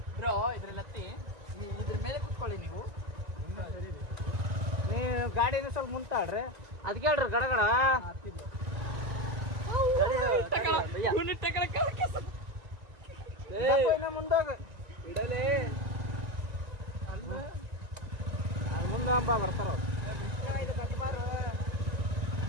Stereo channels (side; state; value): left; late; 1.9 ms